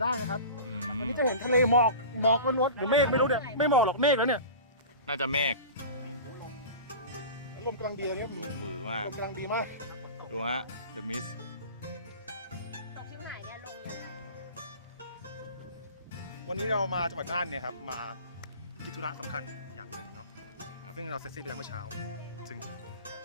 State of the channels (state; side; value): inverted; both; correlation -0.35